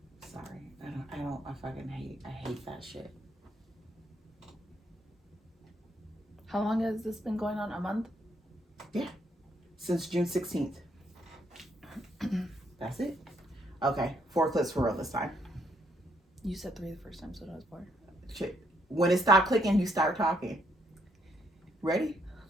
Sorry. I hate that shit. How long has this been going on? A month? Yeah. Since June 16th. That's it? Okay. 4 clips for real this time. You said 3 the first time, so that was 4. Shit. When it stopped clicking, you start talking. Ready?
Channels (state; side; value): normal; both; correlation 0.72